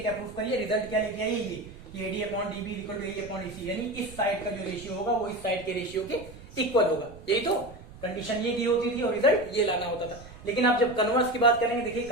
प्रूफ करिए? रिजल्ट क्या लेके आइए? ये AD upon DB is equal to AE upon EC, यानी इस साइड का जो रेशियो होगा वो इस साइड के रेशियो के इक्वल होगा। यही तो कंडीशन ये दी होती थी और रिजल्ट ये लाना होता था। लेकिन आप जब कन्वर्स की बात करेंगे, देखिए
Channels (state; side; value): noise; right; rumble, 18 dB below the sound